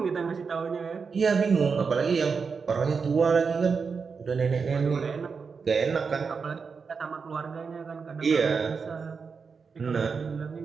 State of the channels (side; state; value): left; quieter; 5.4 dB